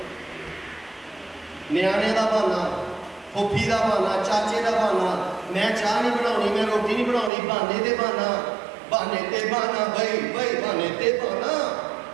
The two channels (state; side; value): drops out; left; at 7.3 s